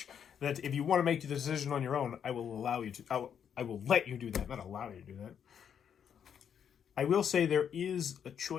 that if you want to make the decision on your own, I will allow you to... I will let you do that, not allow you to do that. I will say there is a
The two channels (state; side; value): quieter; right; 8.1 dB